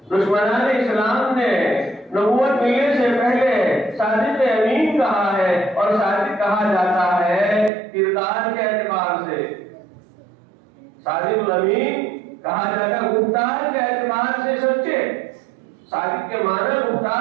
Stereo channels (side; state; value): left; drops out; at 7.7 s